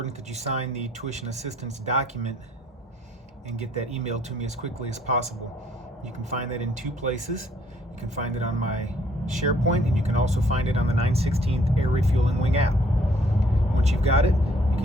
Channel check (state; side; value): normal; both; correlation 0.63